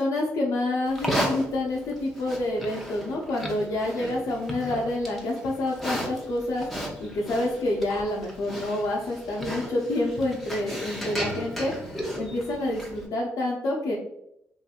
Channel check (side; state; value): both; normal; correlation 0.77